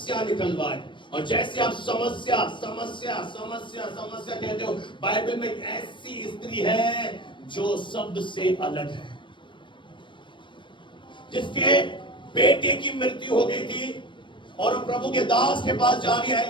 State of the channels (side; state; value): right; late; 0.23 ms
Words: निकलवाए। और जैसे आप समस्या समस्या समस्या समस्या कहते हो, बाइबल में एक ऐसी स्त्री है जो सबसे अलग है, जिसके बेटे की मृत्यु हो गई थी और प्रभु के दास के पास जा रही है,